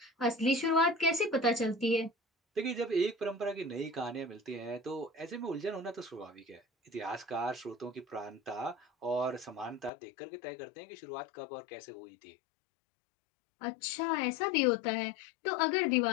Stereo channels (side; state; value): right; drops out; at 9.9 s